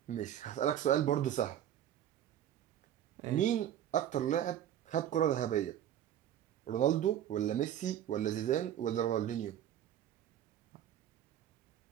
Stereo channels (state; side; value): quieter; left; 10.9 dB